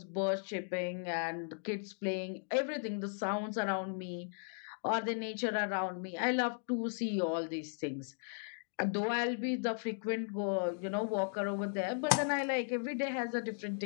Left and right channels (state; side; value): silent; right; digital silence